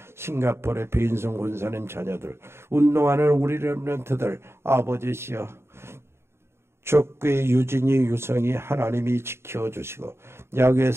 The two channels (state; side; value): late; left; 0.12 ms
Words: 싱가포르의 배인성 권사님 자녀들, 운동하는 우리 렘넌트들, 아버지시여 족구의 유진이 유성이 하나님이 지켜주시고 야구의